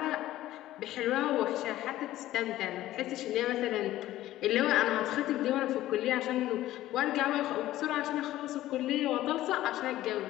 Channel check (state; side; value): quieter; right; 14.8 dB